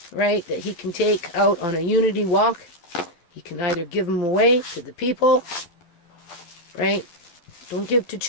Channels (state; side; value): late; right; 12 ms